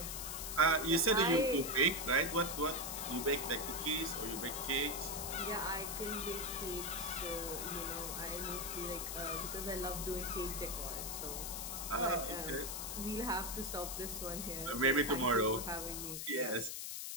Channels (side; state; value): left; noise; hiss, 5 dB below the sound